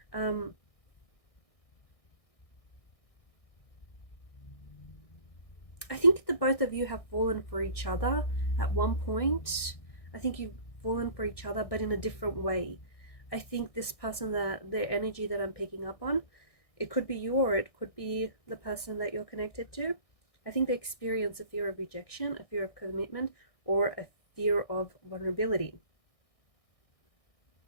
I think the both of you have fallen for each other at one point. I think you've fallen for each other, but in a different way. I think this person, that their energy that I'm picking up on, it could be you or it could be the person that you're connected to. I think they experience a fear of rejection, a fear of commitment, or a fear of vulnerability.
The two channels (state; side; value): late; right; 1.6 ms